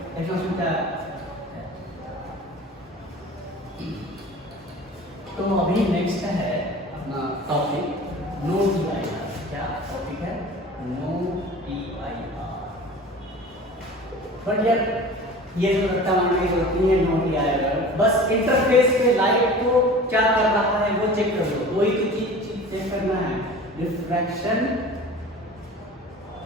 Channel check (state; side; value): normal; both; correlation 0.40